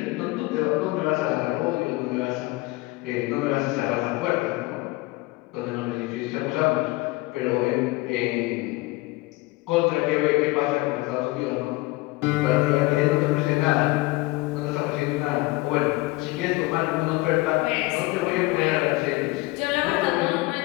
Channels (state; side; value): quieter; right; 21.7 dB